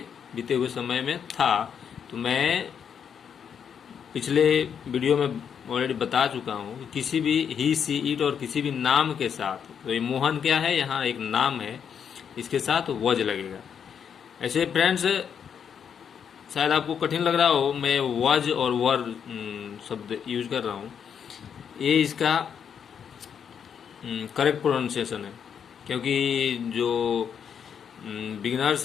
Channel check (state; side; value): quieter; right; 7.6 dB